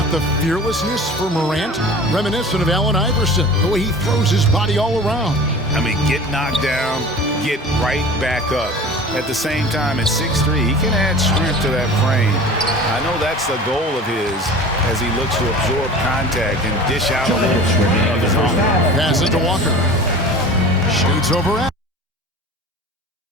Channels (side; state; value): both; normal; correlation 0.39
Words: the fearlessness for Morant, reminiscent of Allen Iverson, the way he throws his body all around. I mean, get knocked down, get right back up. At the same time, at 6'3", he can add strength to that frame. I know that's the goal of his as he looks to absorb contact and dish out a little of his own. Pass it to Walker. Shoots over at.